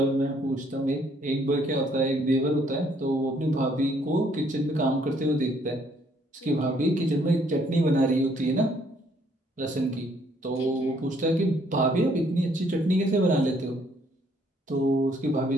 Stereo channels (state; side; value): normal; both; correlation 0.66